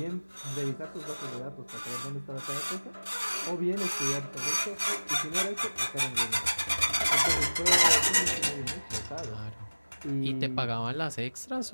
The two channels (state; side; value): inverted; both; correlation -1.00